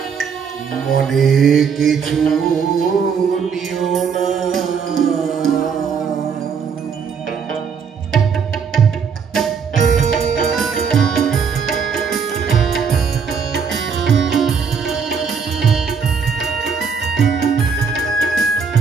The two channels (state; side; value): quieter; left; 6.2 dB